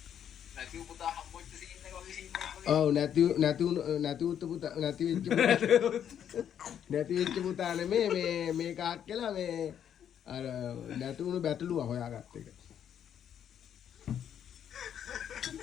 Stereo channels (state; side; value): quieter; right; 9.2 dB